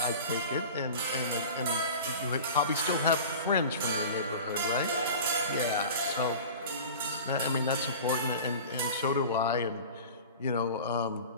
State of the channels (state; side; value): inverted; both; correlation -0.37